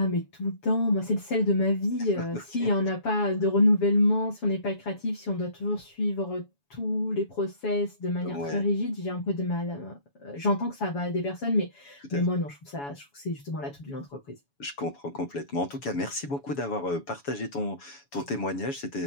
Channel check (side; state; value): right; late; 7.1 ms